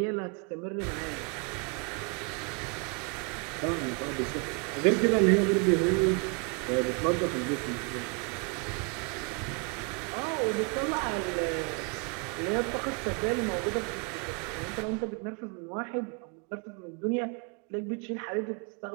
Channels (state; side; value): quieter; left; 35.4 dB